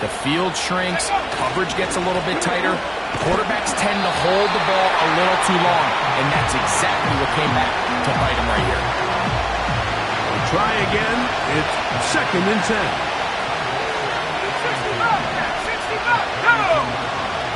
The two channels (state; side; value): identical; both; correlation 1.00